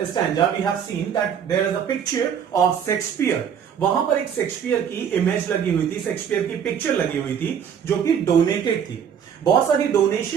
stanza we have seen that there is a picture of Shakespeare. वहां पर एक शेक्सपियर की इमेज लगी हुई थी, शेक्सपियर की पिक्चर लगी हुई थी, जो कि डोनेटेड थी। बहुत सारी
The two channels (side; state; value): left; quieter; 8.0 dB